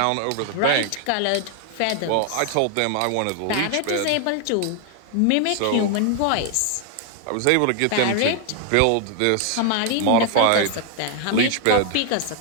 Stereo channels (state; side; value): different; both; correlation 0.00